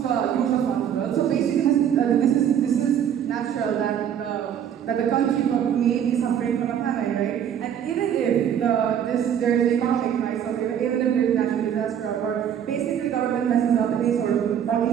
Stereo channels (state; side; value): quieter; left; 9.2 dB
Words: the funds well. So basically, this is natural that the country may be suffering from a famine, right? And even if there is economic crisis, or even if there is natural disaster, or basically government messes up in any